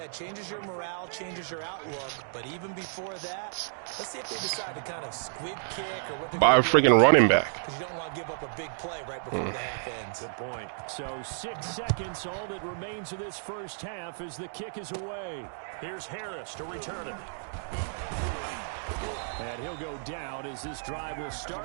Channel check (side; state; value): left; silent; digital silence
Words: it changes your morale, changes your outlook. But even before that, let's see if they decide to kind of squib kick or what they're By a freaking running back. Because you don't want to give up a big play right before the half ends. Good point. So 6 seconds, all that remains of this first half as the kick is away. Here's Harris to return it. And he'll go down as this drive will